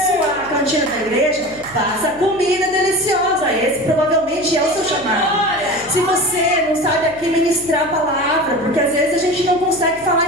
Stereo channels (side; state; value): left; noise; hum, 22 dB below the sound